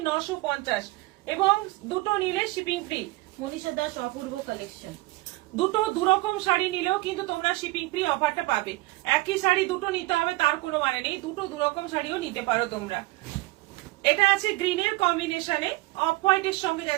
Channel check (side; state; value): left; quieter; 20.8 dB